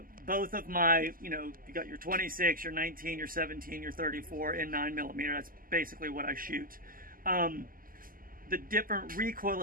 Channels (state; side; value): late; left; 0.41 ms